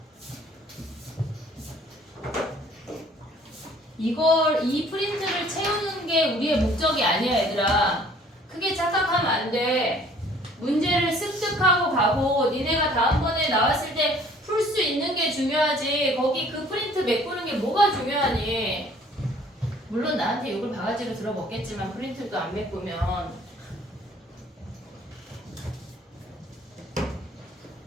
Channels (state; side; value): normal; both; correlation 0.55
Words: 이 프린트를 채우는 게 우리의 목적이 아니야, 얘들아. 크게 착각하면 안 돼. 문제를 습득하고 가고 니네가 다음번에 나왔을 때 풀 수 있는 게 중요하지. 거기 그 프린트 메꾸는 게 뭐가 중요하니? 물론 나한테 욕을 바가지로 들어먹겠지만 프린트도 안 메꾸면.